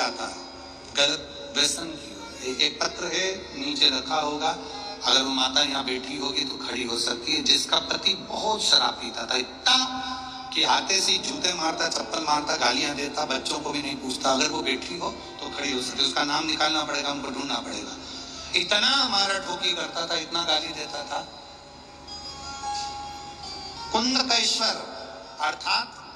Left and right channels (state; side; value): identical; both; correlation 1.00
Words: है, गलत व्यसन की ओर, एक पत्र है नीचे रखा होगा, अगर वो माता यहाँ बैठी होगी तो खड़ी हो सकती है, जिसका पति बहुत शराब पीता था, इतना कि हाथे से जूते मारता, चप्पल मारता, गालियां देता, बच्चों को भी नहीं पूछता। अगर वो बैठी हो तो खड़ी हो सकती है। उसका नाम निकालना पड़ेगा, हमको ढूंढना पड़ेगा। इतना मारा ठोकी करता था, इतना गाली देता था। कुंदकेश्वर अर्थात